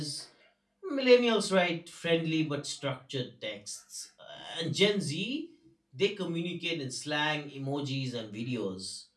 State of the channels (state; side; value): identical; both; correlation 1.00